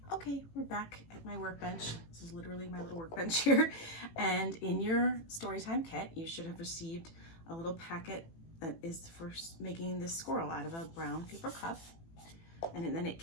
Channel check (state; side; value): late; right; 18 ms